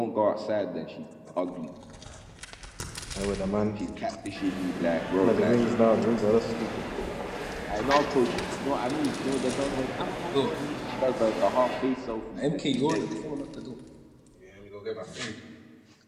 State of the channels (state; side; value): identical; both; correlation 1.00